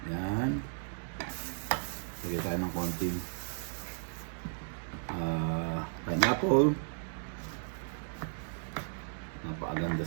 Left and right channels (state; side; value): silent; left; digital silence